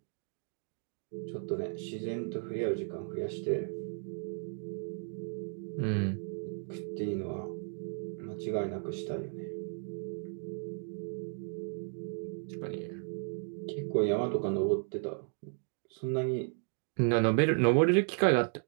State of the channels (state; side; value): silent; left; 55 dB below the other